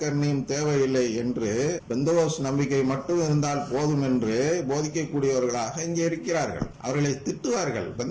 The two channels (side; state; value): both; identical; correlation 1.00